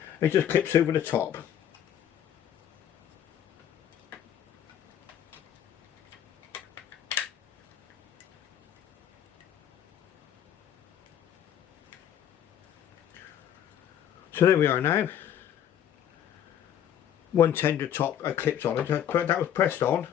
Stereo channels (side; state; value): right; quieter; 10.1 dB